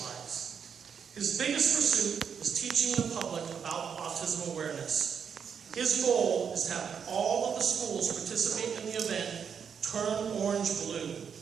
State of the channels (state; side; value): quieter; left; 7.1 dB